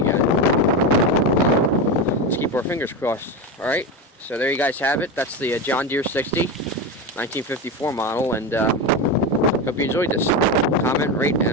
Let's keep our fingers crossed. All right. So there you guys have it. That's the John Deere 60, 1954 model, and hope you enjoyed this. Comment, rate,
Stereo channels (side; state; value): both; normal; correlation 0.18